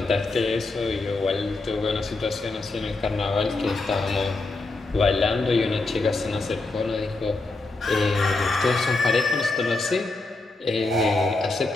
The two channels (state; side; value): quieter; right; 3.2 dB